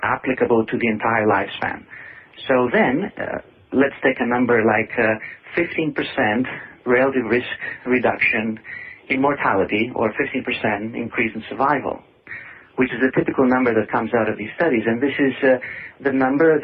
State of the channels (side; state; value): both; identical; correlation 1.00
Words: applicable to the entire lifespan. So then, let's take a number like 15% relative risk reduction in mortality or 15% increase in survival, which is a typical number that comes out of these studies. And this is the number